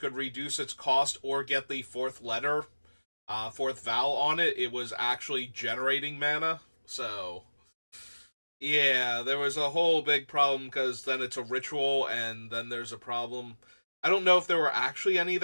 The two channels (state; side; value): inverted; both; correlation -1.00